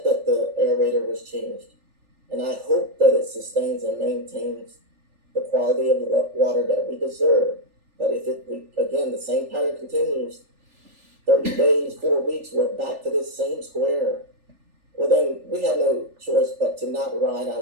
that the aerator was changed, and I hope that it sustains and maintains the quality of the water that we deserve. But if again, the same pattern continues, 30 days, 4 weeks, we're back to this same square. Well, then we have no choice but to not ride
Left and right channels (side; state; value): left; late; 3.4 ms